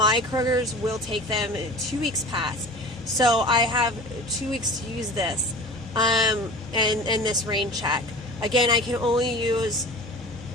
Kroger's will take them 2 weeks past. So I have 2 weeks to use this and this rain check. Again, I can only use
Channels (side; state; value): both; normal; correlation 0.39